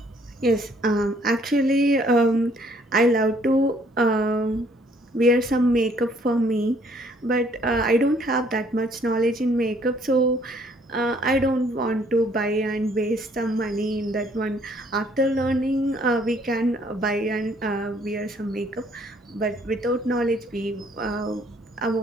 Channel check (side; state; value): both; normal; correlation 0.63